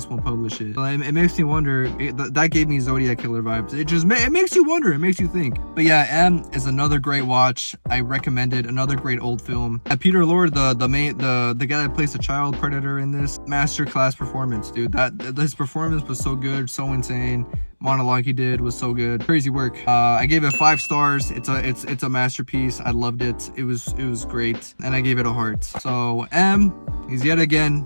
won't publish it. So it makes me wonder. That gave me Zodiac Killer vibes. It makes you wonder. It makes you think. But yeah, M is another great watch. I recommend it. Another great old film. And Peter Lorre, the guy that plays the child predator in this, masterclass performance, dude. His performance was so good, so insane. Monologue he did was so good. Crazy work. I gave it 5 stars. It's a masterpiece. I loved it. It was great, and I gave it a heart. So M is yet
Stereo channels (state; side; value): inverted; both; correlation -1.00